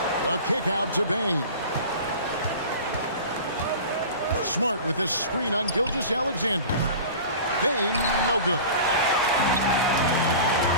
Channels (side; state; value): both; inverted; correlation -0.37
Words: The kick out to Bane. Smart with this screen on Gilgeous-Alexander. Bane, no good.